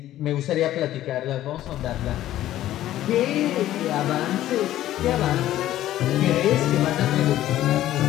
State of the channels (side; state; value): right; quieter; 13.5 dB